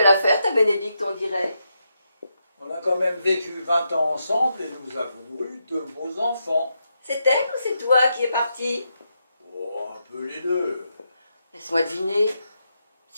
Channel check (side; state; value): both; inverted; correlation -0.83